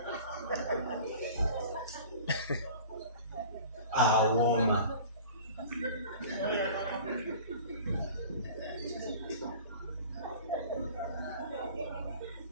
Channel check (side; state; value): both; inverted; correlation -0.42